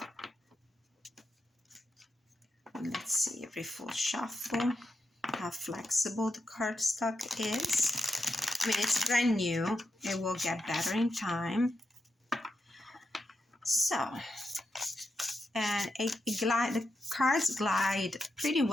Let's see every full shuffle, how flexible the cardstock is. I mean, it's brand new. It will get better in time. So, and the cards glide pretty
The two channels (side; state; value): both; normal; correlation 0.86